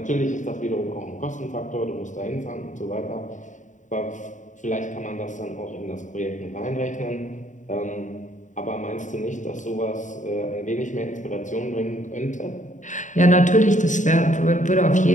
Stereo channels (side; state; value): right; late; 0.36 ms